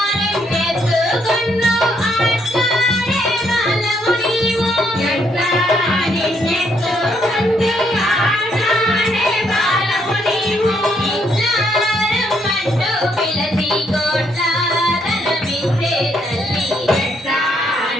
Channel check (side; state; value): both; normal; correlation 0.73